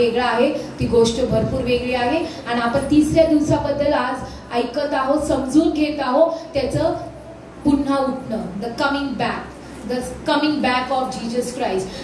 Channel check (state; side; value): identical; both; correlation 1.00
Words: आहे, ती गोष्ट भरपूर वेगळी आहे. आणि आपण तिसऱ्या दिवसाबद्दल आज ऐकत आहोत, समजून घेत आहोत त्याचं पुन्हा उठणं, the coming back of Jesus Christ.